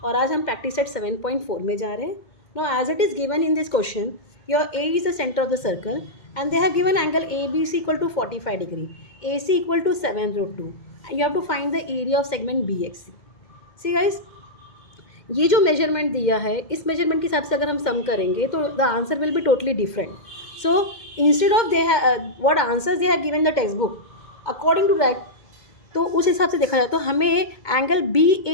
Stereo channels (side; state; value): right; late; 2.1 ms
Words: और आज हम practice set 7.4 में जा रहे हैं. Now as it is given in this question, your A is the center of the circle and they have given angle ABC equal to 45 degree, AC equal to 7 root 2 and you have to find the area of segment BXC. See guys, ये जो measurement दिया है इस measurement के हिसाब से अगर हम सम करेंगे तो the answer will be totally different. So instead of they what answers they have given the text book according to that, तो उस हिसाब से देखा जाए तो हमें एंगल